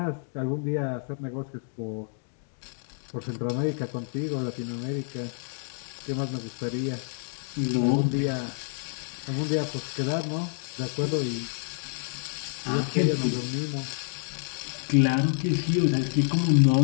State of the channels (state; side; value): silent; right; digital silence